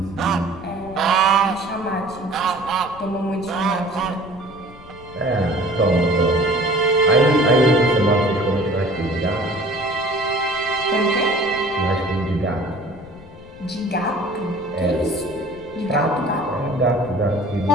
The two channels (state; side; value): noise; left; rumble, 20 dB below the sound